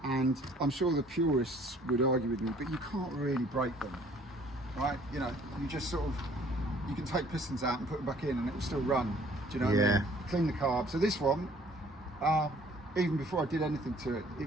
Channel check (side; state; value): both; normal; correlation 0.57